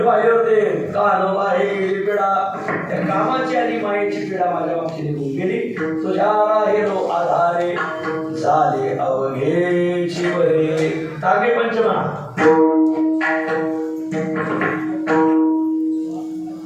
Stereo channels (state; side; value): identical; both; correlation 1.00